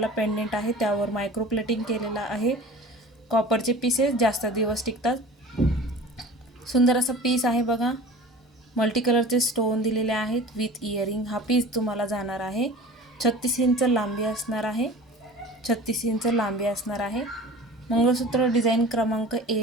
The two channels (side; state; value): both; normal; correlation 0.40